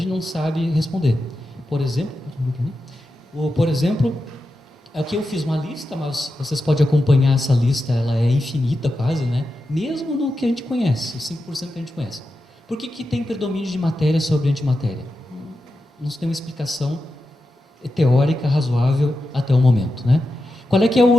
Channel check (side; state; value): both; normal; correlation 0.90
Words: não sabe responder. Por exemplo, aqui eu fiz uma lista, mas vocês podem acompanhar essa lista, ela é infinita quase, né? Mesmo no que a gente conhece, os 5% que a gente conhece. Por que tem predomínio de matéria sobre antimatéria? Não se tem uma explicação teórica razoável até o momento, né? Qual é que é a